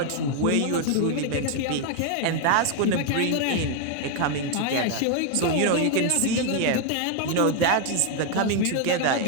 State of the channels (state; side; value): different; both; correlation 0.00